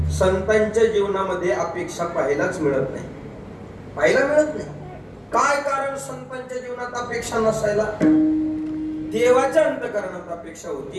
संतांच्या जीवनामध्ये अपेक्षा पाहायलाच मिळत नाही, पाहायला मिळत नाही. काय कारण संतांच्या जीवनात अपेक्षा नसायला? देवाच्या अंतकरणात अपेक्षा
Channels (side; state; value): both; identical; correlation 1.00